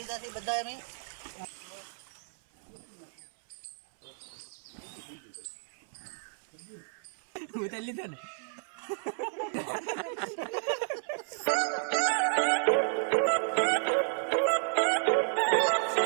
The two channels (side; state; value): left; silent; 56 dB below the other